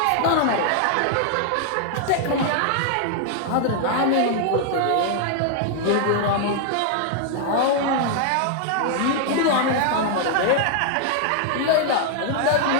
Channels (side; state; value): both; different; correlation 0.00